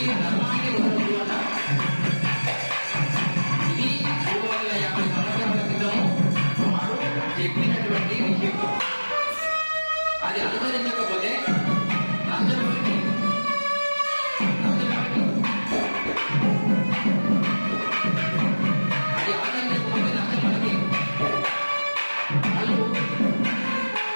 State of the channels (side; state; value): both; inverted; correlation -1.00